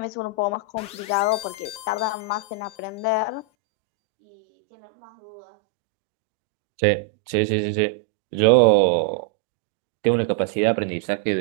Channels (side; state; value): left; drops out; at 3.5 s